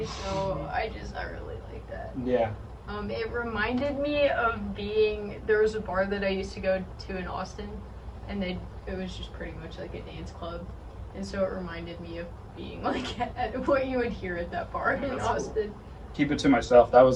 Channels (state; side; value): identical; both; correlation 1.00